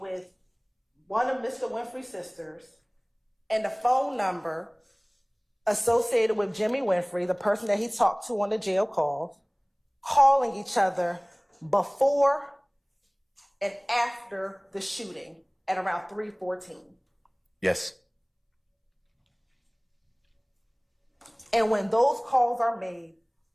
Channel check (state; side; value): identical; both; correlation 1.00